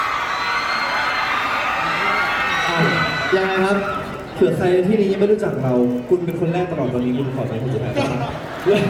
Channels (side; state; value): both; identical; correlation 1.00